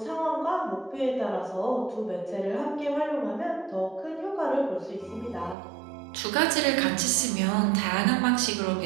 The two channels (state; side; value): drops out; left; at 5.6 s